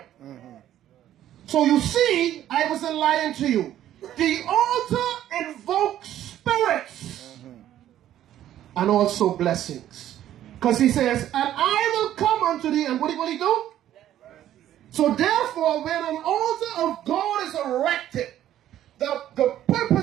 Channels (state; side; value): quieter; left; 12.1 dB